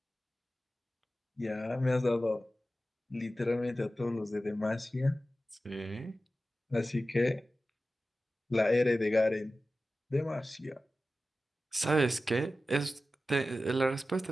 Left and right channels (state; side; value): normal; both; correlation 0.94